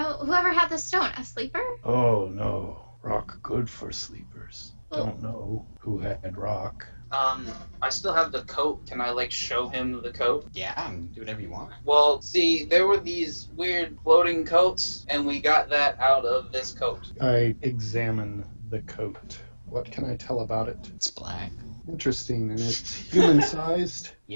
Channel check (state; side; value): inverted; both; correlation -1.00